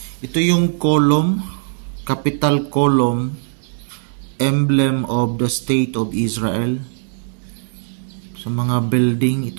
Ito yung column, capital column, emblem of the state of Israel. Sa mga building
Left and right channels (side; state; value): left; silent; digital silence